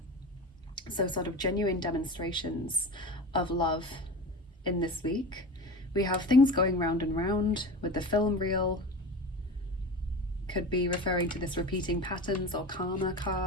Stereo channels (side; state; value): both; normal; correlation 0.30